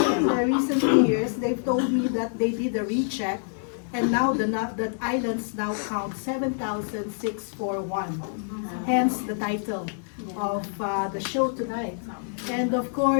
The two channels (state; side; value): silent; right; digital silence